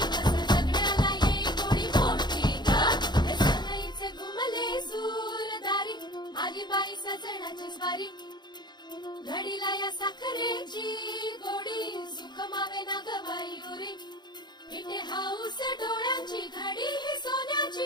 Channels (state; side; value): late; right; 0.21 ms